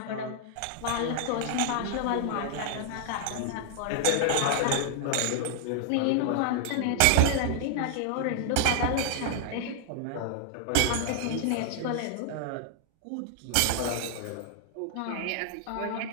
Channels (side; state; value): both; different; correlation 0.00